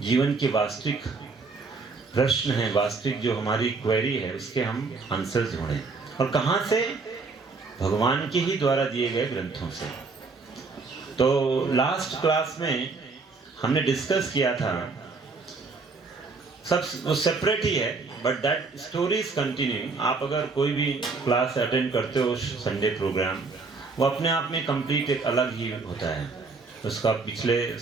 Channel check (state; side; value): quieter; left; 4.2 dB